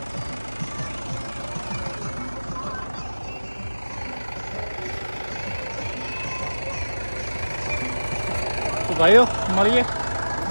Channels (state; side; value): inverted; both; correlation -1.00